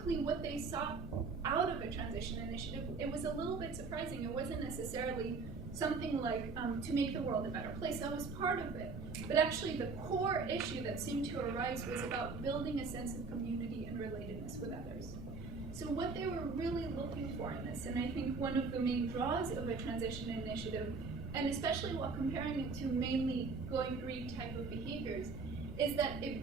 what they sought out of a transition initiative, it was a little bit surprising. It wasn't necessarily something like to make the world a better place. That was part of it. But actually the core issue that seemed to arise was about building a sense of community and relatedness with others. So what they were really looking for in this, and I think one of the main draws of a transition initiative, and especially while comparing it to mainly going green type of behaviors, is that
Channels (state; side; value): quieter; left; 4.4 dB